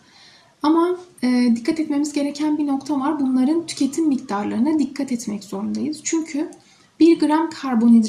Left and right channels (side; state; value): both; identical; correlation 1.00